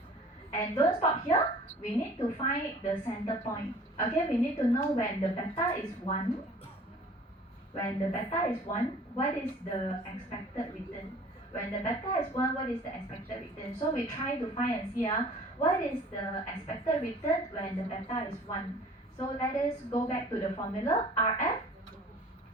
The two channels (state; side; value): normal; both; correlation 0.48